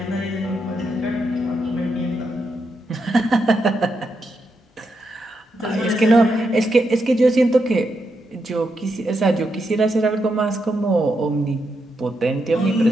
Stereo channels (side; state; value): both; normal; correlation 0.83